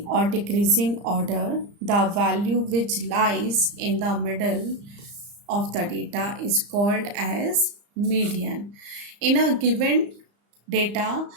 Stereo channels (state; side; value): late; left; 35 ms